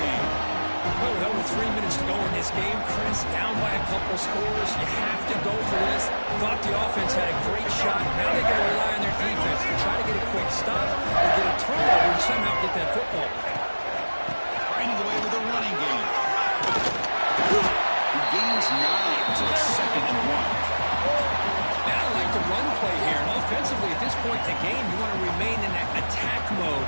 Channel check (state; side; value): inverted; both; correlation -1.00